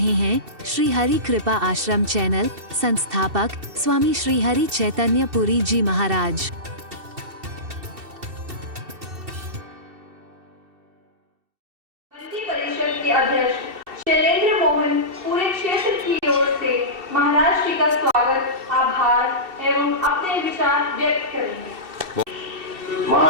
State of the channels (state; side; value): late; left; 2.7 ms